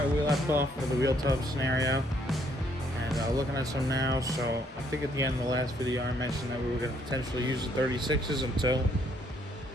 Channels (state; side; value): normal; both; correlation 0.68